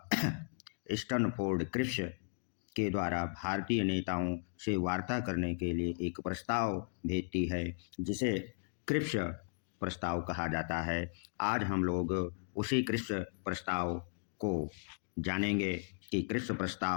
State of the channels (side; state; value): right; silent; digital silence